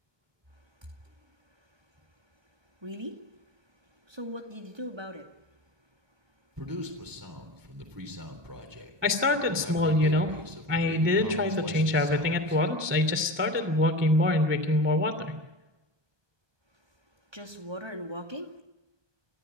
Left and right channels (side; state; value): left; late; 1.2 ms